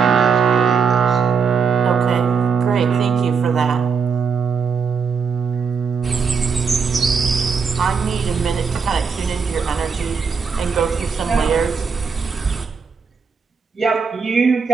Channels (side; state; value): left; quieter; 5.7 dB